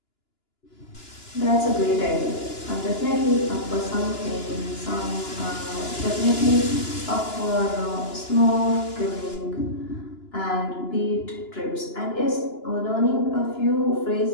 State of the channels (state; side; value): late; right; 2.9 ms